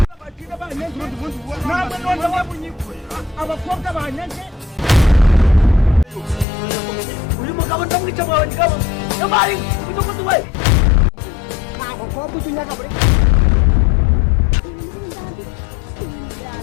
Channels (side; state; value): right; drops out; at 6.5 s